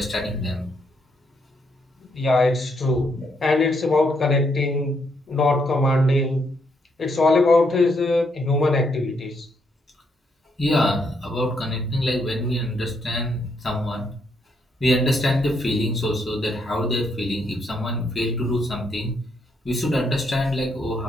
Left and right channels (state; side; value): normal; both; correlation 0.75